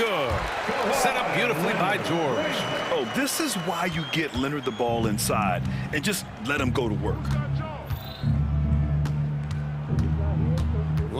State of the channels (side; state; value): both; identical; correlation 1.00